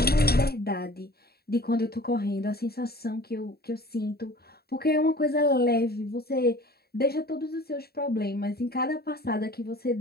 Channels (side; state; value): right; late; 0.46 ms